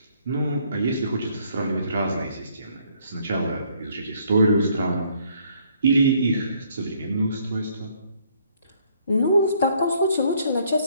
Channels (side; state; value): both; inverted; correlation -0.66